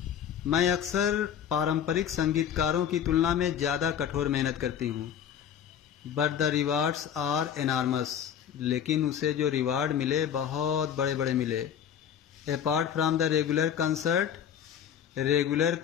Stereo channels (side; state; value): right; quieter; 9.0 dB